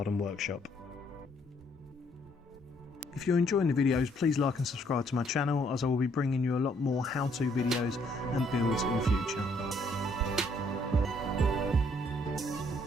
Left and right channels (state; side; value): normal; both; correlation 0.67